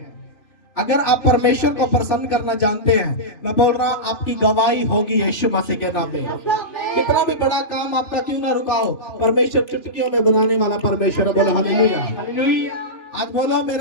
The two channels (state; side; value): late; right; 2.6 ms